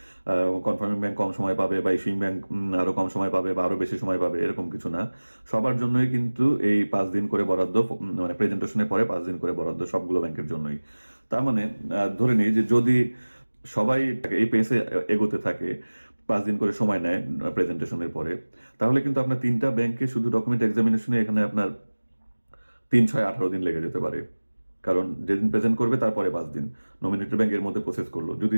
কনফার্মিং ব্যাংক কম সময় পাবে, বা ইস্যুইং ব্যাংক আরো কম সময় পাবে বা আরো বেশি সময় পাবে, এরকম কিছু না। সবার জন্যই কিন্তু এই 5 দিন করে বরাদ্দ, মানে প্রেজেন্টেশনের পরে 5 দিন করে বরাদ্দ সবগুলো ব্যাংকের জন্যই। তার মানে ধরে নিই যে যদি সবাই এই পেসে এগোতে থাকে, 5 দিন করে সময় নেয় প্রেজেন্টেশনের পরে, তাহলে কিন্তু আপনার 3টা ব্যাংকে শুধু ডকুমেন্ট এক্সামিনেশনে এখানে আপনার 3, 6, 18 দিন লেগে যেতে পারে। কারণ যেদিন প্রেজেন্ট করবে তারপরে 5 দিন নমিনেটেড ব্যাংক এর মধ্যে প্রসেস করলো, যদি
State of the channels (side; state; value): both; inverted; correlation -1.00